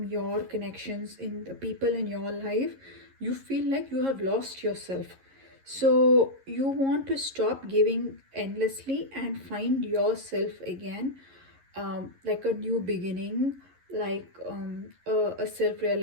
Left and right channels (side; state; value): left; late; 11 ms